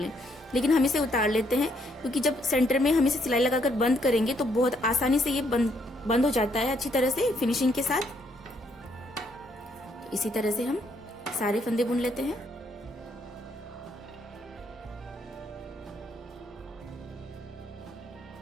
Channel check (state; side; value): normal; both; correlation 0.72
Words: लेकिन हम इसे उतार लेते हैं क्योंकि जब सेंटर में हम इसे सिलाई लगाकर बंद करेंगे तो बहुत आसानी से ये बंद हो जाता है अच्छी तरह से फिनिशिंग के साथ। तो इसी तरह से हम सारे फंदे बुन लेते हैं।